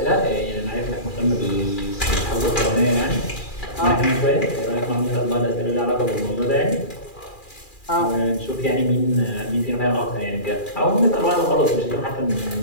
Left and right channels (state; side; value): late; right; 2.4 ms